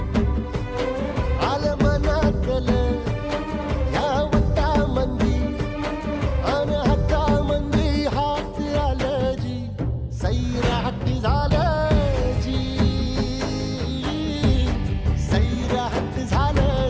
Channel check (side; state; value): both; identical; correlation 1.00